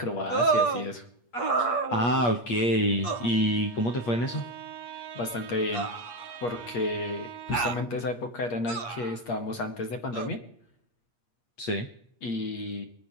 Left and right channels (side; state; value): right; late; 8.4 ms